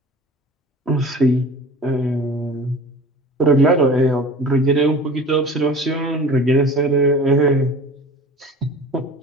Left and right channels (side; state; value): both; normal; correlation 0.40